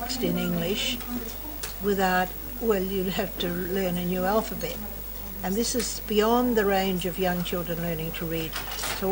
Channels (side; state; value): both; identical; correlation 1.00